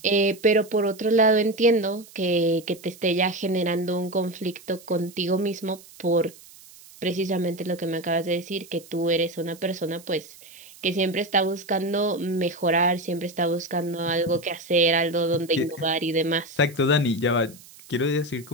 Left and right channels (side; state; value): right; noise; hiss, 22 dB below the sound